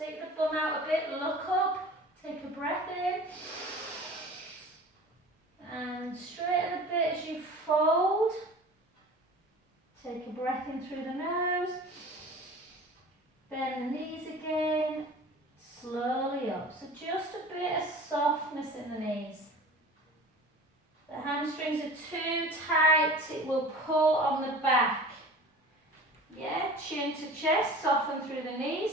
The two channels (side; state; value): both; normal; correlation 0.40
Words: the bum out a bit, look up, take a breath in, and straighten a bit as you fold. Take a breath in through the nose, bend the knees again, slowly up. So just a bit of softness in the knees. The hamstrings are too tight, it will pull on the back. Yeah, chin to chest, soften through the knees,